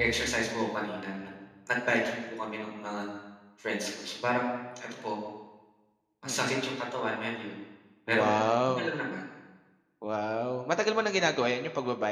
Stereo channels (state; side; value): identical; both; correlation 1.00